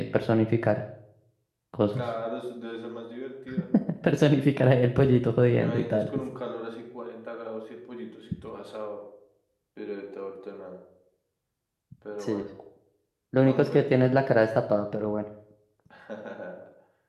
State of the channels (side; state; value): both; identical; correlation 1.00